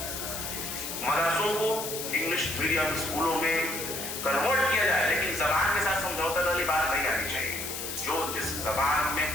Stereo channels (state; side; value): noise; left; hiss, 5 dB below the sound